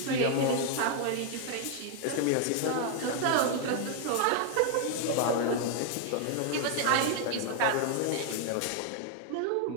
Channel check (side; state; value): both; different; correlation 0.00